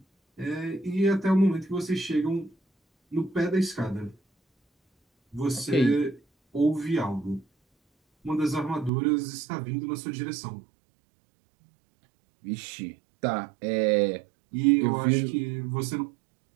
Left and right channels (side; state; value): left; drops out; at 8.9 s